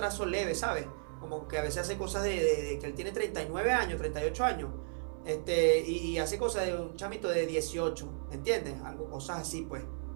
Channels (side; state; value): left; silent; 55 dB below the other